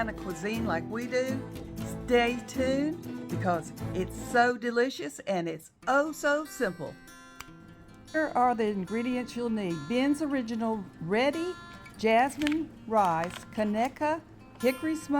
cuisine like we do, stay tuned because it's so delicious and it's oh so simple. Here are the ingredients you'll need. Ben's Original Ready Jasmine Rice, Conecuh Hickory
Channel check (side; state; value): both; identical; correlation 1.00